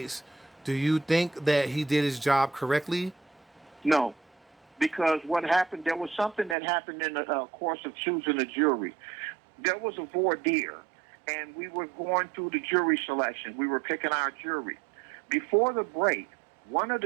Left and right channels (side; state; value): left; drops out; at 6.6 s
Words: do you think that he did his job correctly? No, because what happened, there was something that happened in the course of choosing a jury. There was a voir dire, and we were going through the jury selection. We were picking our jury. Before the break, one of